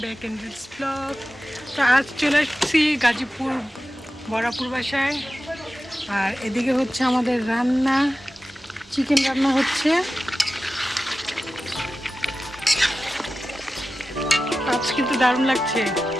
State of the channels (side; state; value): both; normal; correlation 0.94